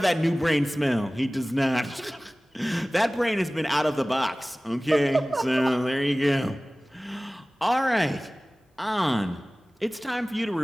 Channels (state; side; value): normal; both; correlation 0.98